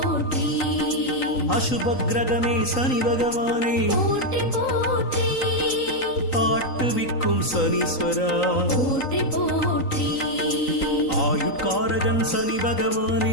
அசுப கிரகமே சனி பகவானே போற்றி போற்றி ஆட்டுவிக்கும் சனீஸ்வரா போற்றி போற்றி ஆயுட்காரகன் சனி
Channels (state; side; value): late; right; 3.9 ms